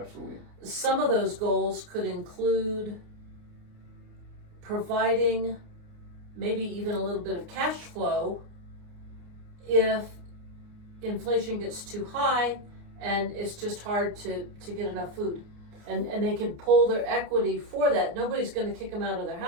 Some of those goals could include providing maybe even a little bit of cash flow if inflation gets too high and it's just hard to get enough food. And they can pull their equity for that. Nobody's going to kick them out of their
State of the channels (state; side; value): late; left; 28 ms